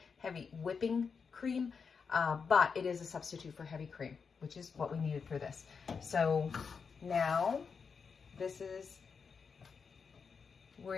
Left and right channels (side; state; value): right; quieter; 5.7 dB